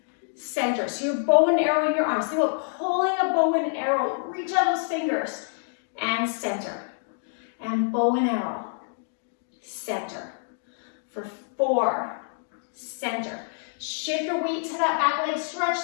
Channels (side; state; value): right; silent; digital silence